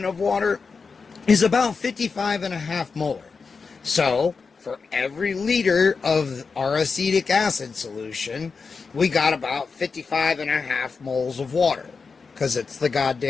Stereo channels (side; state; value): right; quieter; 4.9 dB